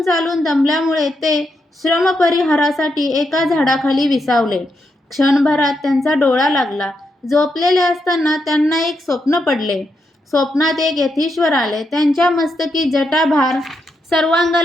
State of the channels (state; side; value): normal; both; correlation 0.82